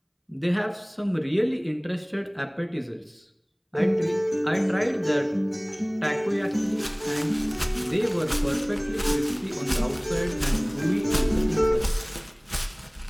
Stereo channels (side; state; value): both; identical; correlation 1.00